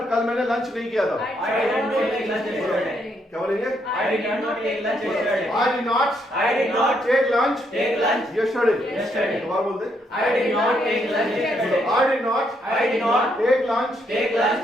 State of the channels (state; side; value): normal; both; correlation 0.75